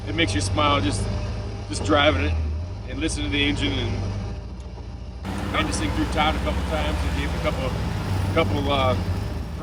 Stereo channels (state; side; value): identical; both; correlation 1.00